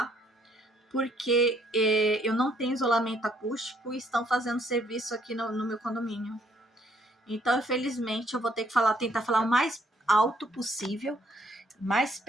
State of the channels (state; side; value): normal; both; correlation 0.67